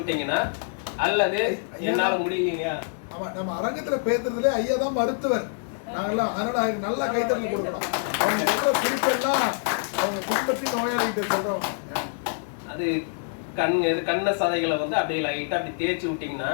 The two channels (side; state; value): right; silent; digital silence